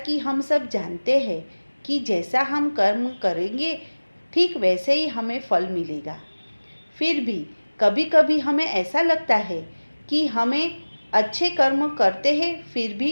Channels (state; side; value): inverted; both; correlation -1.00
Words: हम सब जानते हैं कि जैसा हम कर्म करेंगे ठीक वैसे ही हमें फल मिलेगा। फिर भी कभी कभी हमें ऐसा लगता है कि हमें अच्छे कर्म करते हैं फिर